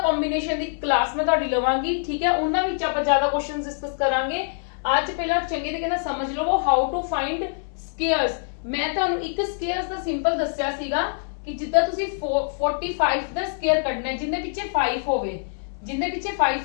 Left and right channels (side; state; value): right; silent; 62 dB below the other